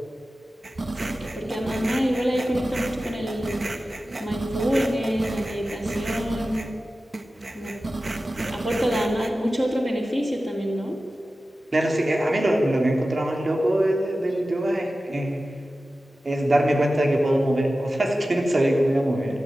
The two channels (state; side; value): normal; both; correlation 0.95